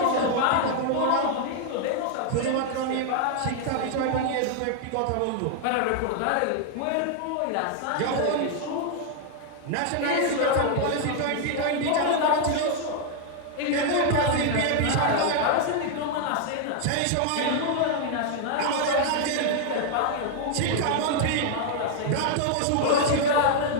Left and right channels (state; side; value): different; both; correlation 0.00